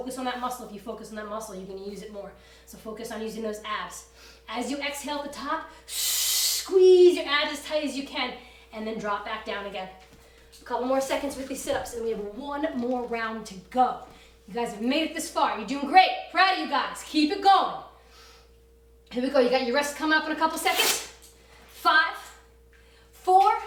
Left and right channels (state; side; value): identical; both; correlation 1.00